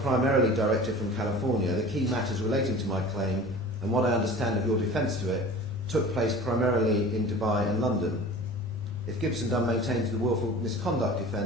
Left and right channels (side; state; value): both; normal; correlation 0.40